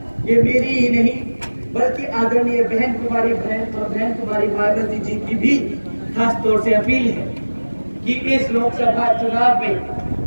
ये मेरी ही नहीं बल्कि आदरणीय बहन कुमारी मायावती जी की भी खास तौर से अपील है कि इस लोकसभा चुनाव में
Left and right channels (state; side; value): inverted; both; correlation -1.00